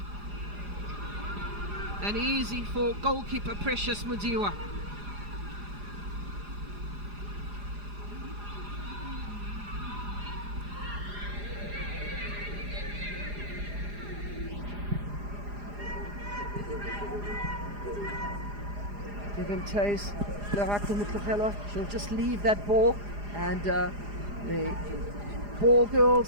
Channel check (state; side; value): late; left; 4.9 ms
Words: And easy for goalkeeper Precious Mudiwa. Give him chase. She'll just leave that ball, and the ball